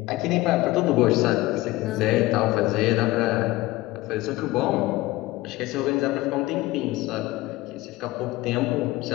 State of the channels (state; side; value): quieter; right; 18.7 dB